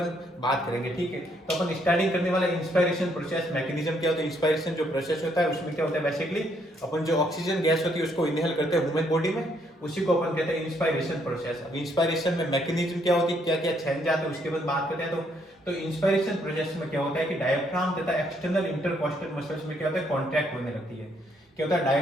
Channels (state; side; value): normal; both; correlation 0.71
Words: बात करेंगे, ठीक है। तो अपन स्टार्टिंग करने वाला इंस्पिरेशन प्रोसेस मैकेनिज्म क्या होता है, इंस्पिरेशन जो प्रोसेस होता है उसमें क्या होता है, बेसिकली अपन जो ऑक्सीजन गैस होती है उसको इनहेल करते हैं ह्यूमन बॉडी में, उसी को अपन कहते हैं इंस्पिरेशन प्रोसेस। अब इंस्पिरेशन में मैकेनिज्म क्या होती है, क्या क्या चेंज आते हैं उसके बाद बात करते हैं। तो इंस्पिरेशन प्रोसेस में क्या होता है कि डायफ्राम तथा एक्सटर्नल इंटरकोस्टल मसल्स में क्या होता है, कॉन्ट्रैक्ट होने लगती है। क्या होता है,